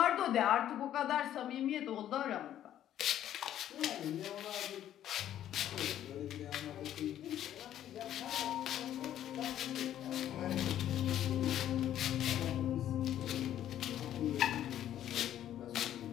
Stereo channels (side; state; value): right; quieter; 11.4 dB